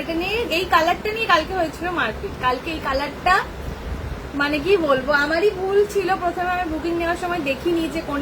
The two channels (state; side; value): identical; both; correlation 1.00